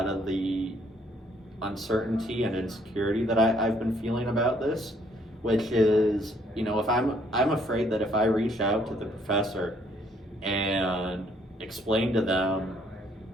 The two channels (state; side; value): normal; both; correlation 0.66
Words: of the uncertainty and insecurity that I've been feeling about this, which is, if I'm afraid that if I reach out to the professor and explain to them